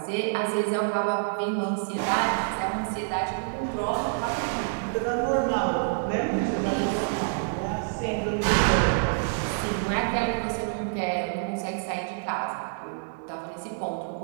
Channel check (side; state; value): left; silent; digital silence